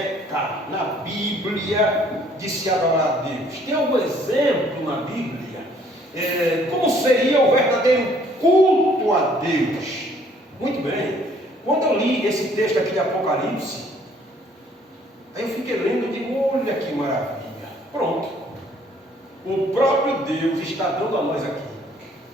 na Bíblia de se adorar a Deus? Tem algum exemplo na Bíblia? Como seria o verdadeiro culto a Deus? Muito bem, quando eu li esse texto aqui de Apocalipse, aí eu fiquei lendo e digo, olha que maravilha, pronto, o próprio Deus está dando a nós aqui,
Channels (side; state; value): both; normal; correlation 0.61